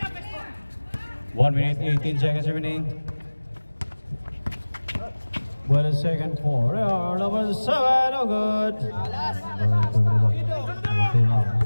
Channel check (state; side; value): inverted; both; correlation -1.00